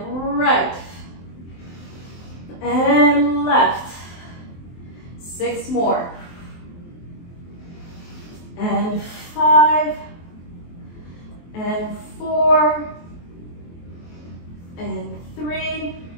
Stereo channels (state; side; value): late; right; 23 ms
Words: right and left. 6 more. And 5 and 4 and 3